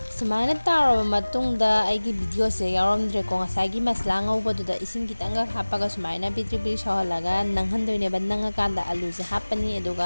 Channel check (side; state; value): both; inverted; correlation -1.00